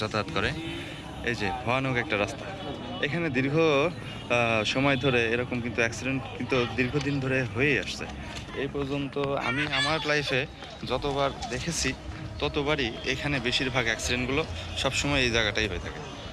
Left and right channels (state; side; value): identical; both; correlation 1.00